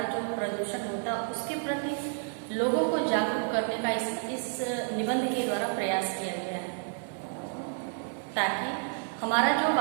जो प्रदूषण होता है, उसके प्रति लोगों को जागरूक करने का इस निबंध के द्वारा प्रयास किया गया है, ताकि हमारा जो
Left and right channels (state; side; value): silent; left; 58 dB below the other